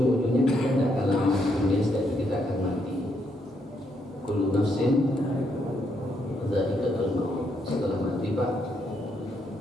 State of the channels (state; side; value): normal; both; correlation 0.76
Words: kita tidak akan lama di dunia, setelah kita akan mati. Kullu nafsin dzaiqatul maut. Setelah mati Pak,